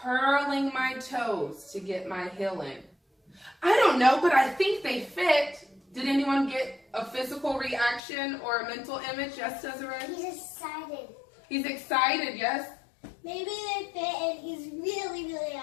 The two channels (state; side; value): drops out; right; at 8.0 s